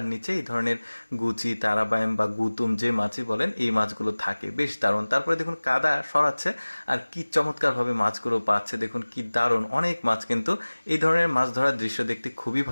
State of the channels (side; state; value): both; inverted; correlation -1.00